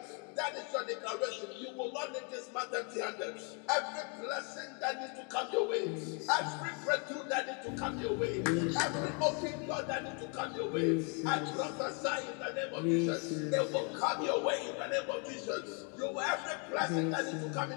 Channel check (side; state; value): right; quieter; 36.9 dB